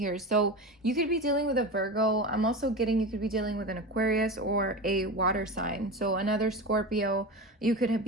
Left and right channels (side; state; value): both; normal; correlation 0.26